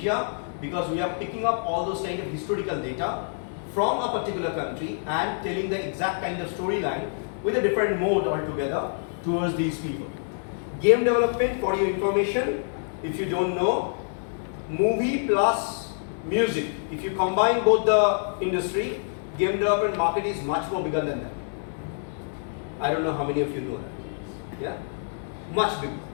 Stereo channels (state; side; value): silent; right; digital silence